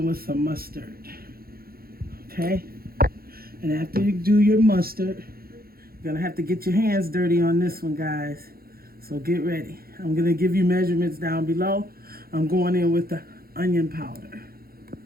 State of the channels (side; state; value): left; late; 0.44 ms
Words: with some mustard. Okay, and after you do your mustard, you're gonna have to get your hands dirty on this one, guys, so get ready. I'm gonna give you measurements down below. I'm going in with the onion powder.